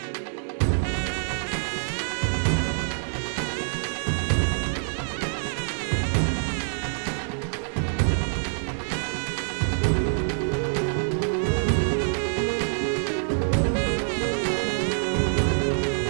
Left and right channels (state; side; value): silent; left; digital silence